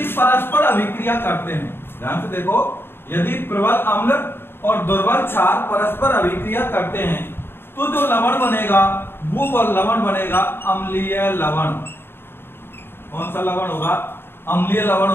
परस्पर अभिक्रिया करते हैं, ध्यान से देखो, यदि प्रबल अम्ल और दुर्बल क्षार परस्पर अभिक्रिया करते हैं तो जो लवण बनेगा वो लवण बनेगा अम्लीय लवण। कौन सा लवण होगा? अम्लीय लवण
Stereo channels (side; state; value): right; late; 0.11 ms